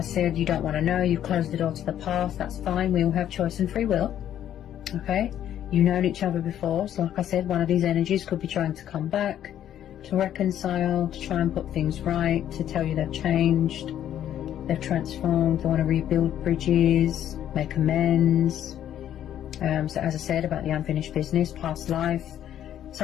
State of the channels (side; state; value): right; quieter; 10.8 dB